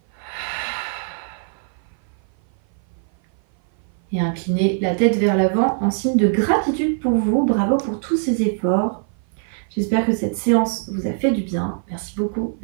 Et inclinez la tête vers l'avant en signe de gratitude pour vous. Bravo pour tous ces efforts. J'espère que cette séance vous a fait du bien. Merci beaucoup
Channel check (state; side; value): silent; left; 56 dB below the other